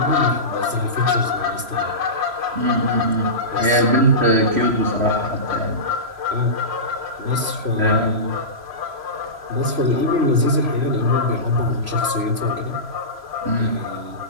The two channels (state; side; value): late; left; 3.0 ms